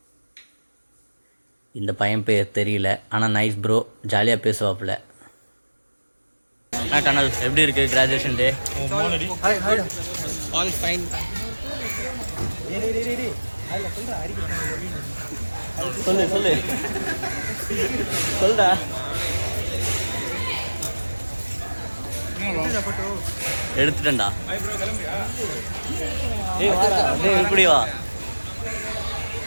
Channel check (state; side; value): inverted; both; correlation -1.00